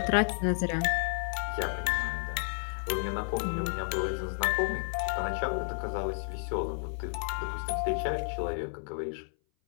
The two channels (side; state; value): right; silent; 57 dB below the other